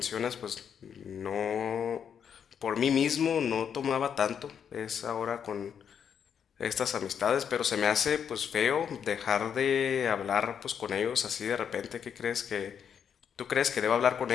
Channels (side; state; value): right; quieter; 7.8 dB